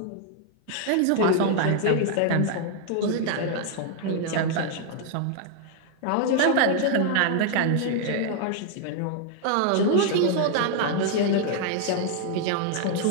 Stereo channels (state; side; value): different; both; correlation 0.00